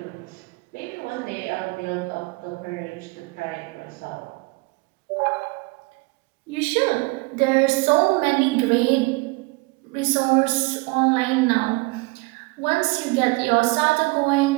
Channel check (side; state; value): left; quieter; 25.4 dB